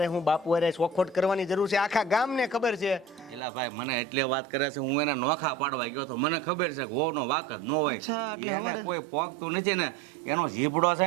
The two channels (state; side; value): drops out; left; at 3.4 s